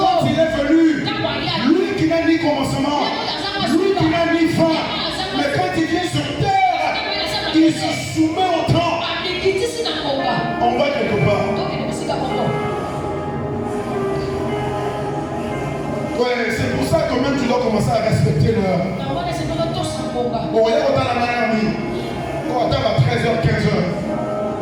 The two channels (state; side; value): identical; both; correlation 1.00